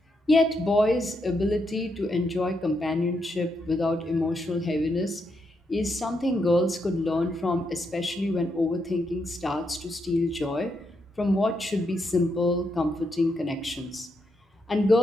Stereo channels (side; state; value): both; normal; correlation 0.80